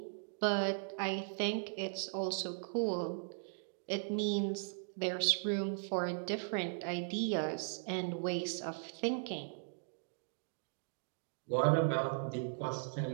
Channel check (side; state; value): left; silent; digital silence